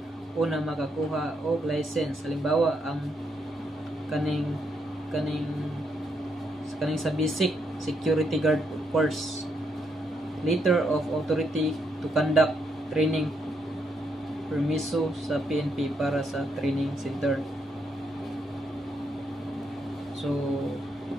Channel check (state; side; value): normal; both; correlation 0.77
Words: una makakuha og license. Halimbawa ang kaning sa basic security guard course, letter of authority to conduct training permiso sa PNP para sa training center. So